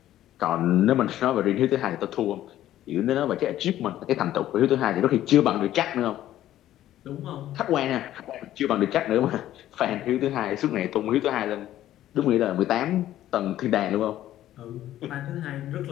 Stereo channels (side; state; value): right; quieter; 13.1 dB